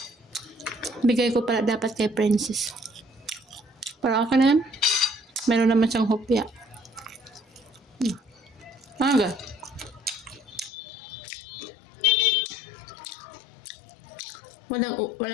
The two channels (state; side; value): drops out; right; at 10.7 s